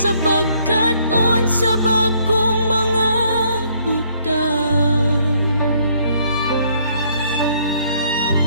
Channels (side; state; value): both; inverted; correlation -0.66